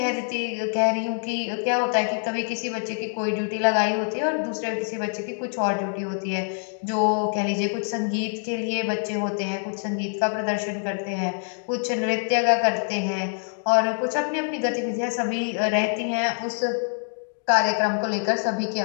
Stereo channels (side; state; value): right; silent; 62 dB below the other